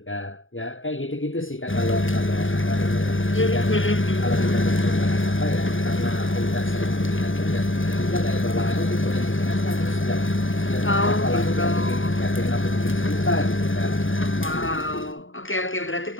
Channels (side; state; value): right; late; 0.58 ms